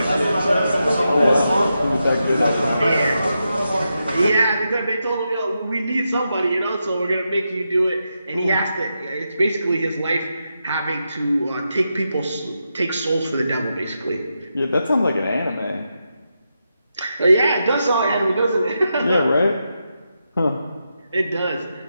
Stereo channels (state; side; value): inverted; both; correlation -0.86